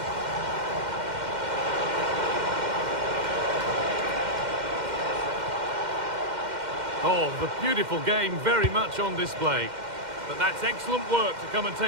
Oh, the beautiful game very much on display. But that's excellent work to come and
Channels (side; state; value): left; late; 2.1 ms